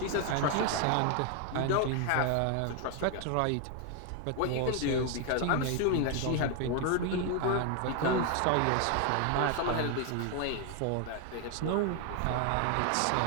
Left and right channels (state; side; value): different; both; correlation 0.01